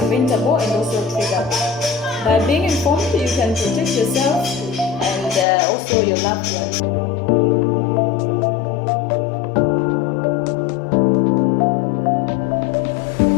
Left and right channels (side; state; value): right; drops out; at 5.5 s